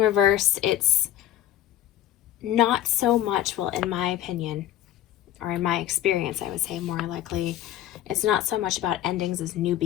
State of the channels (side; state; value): right; quieter; 12.7 dB